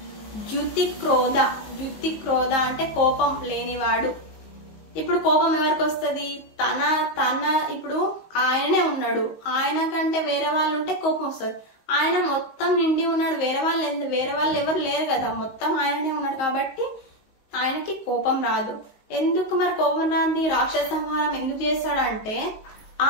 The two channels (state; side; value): late; right; 19 ms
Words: ద్యుతి క్రోధ అంటే కోపం లేనివాడు. ఇప్పుడు కోపం ఎవరికి వస్తుంది? తన ఇప్పుడు ఆయననే ఉన్నాడు. ఆయన కంటే వేరే వాళ్ళు ఉంటే కోపం వస్తుంది. ఆయన మొత్తం నిండి ఉన్నాడు. వేరే వాళ్ళు ఎవరు లేరు కదా. మొత్తం ఆయననే ఉన్నాడు కాబట్టి ఆయనకి కోపం రాదు. ఎందుకు మరి కోపం రాంది? రాక్షస సంహారం ఎందుకు చేస్తాడంటే